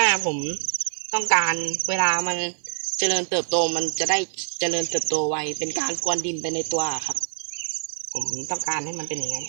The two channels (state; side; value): silent; left; 62 dB below the other